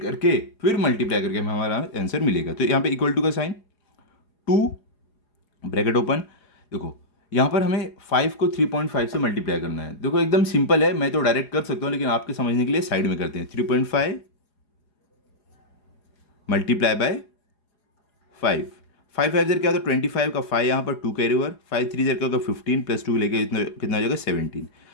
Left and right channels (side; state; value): right; late; 4.9 ms